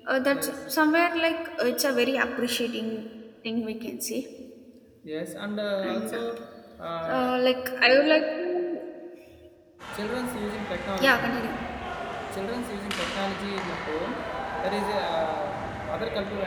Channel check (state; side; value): identical; both; correlation 1.00